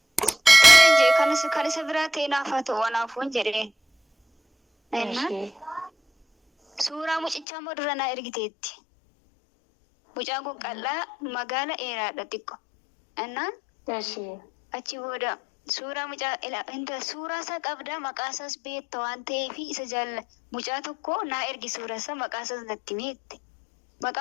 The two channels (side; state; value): right; drops out; at 7.5 s